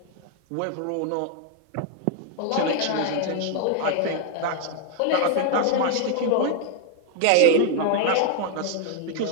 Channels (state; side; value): different; both; correlation 0.00